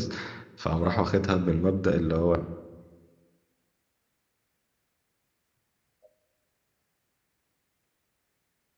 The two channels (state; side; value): identical; both; correlation 1.00